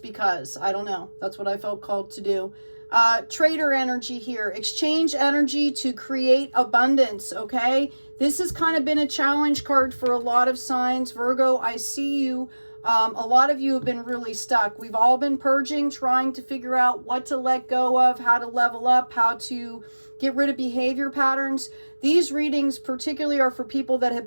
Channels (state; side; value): inverted; both; correlation -1.00